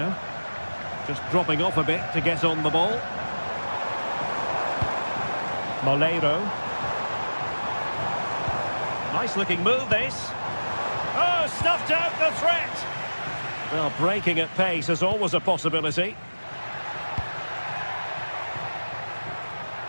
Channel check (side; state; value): both; inverted; correlation -1.00